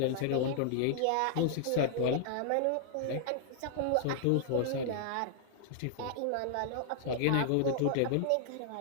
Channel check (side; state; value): both; different; correlation -0.01